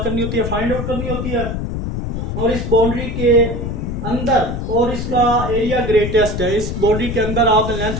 होती है, फाइंड आउट करनी होती है। और इस बाउंड्री के अंदर और इसका एरिया ग्रेटेस्ट है, इस बाउंड्री के अंदर आपने लेंथ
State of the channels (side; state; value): left; noise; rumble, 4 dB below the sound